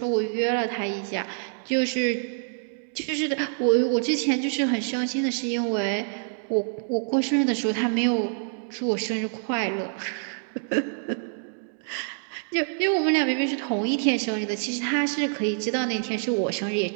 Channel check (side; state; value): left; silent; digital silence